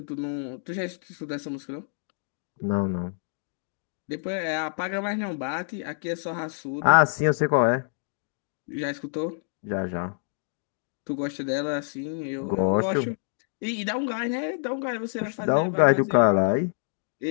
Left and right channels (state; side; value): silent; right; digital silence